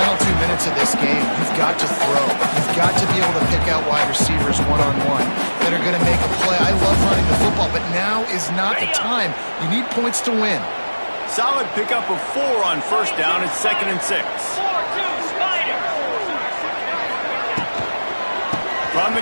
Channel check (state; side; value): inverted; both; correlation -1.00